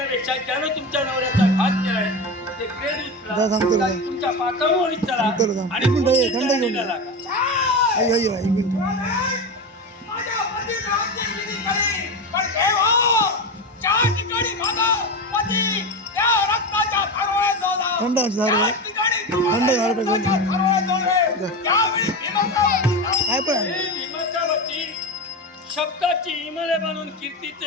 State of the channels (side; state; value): both; normal; correlation 0.21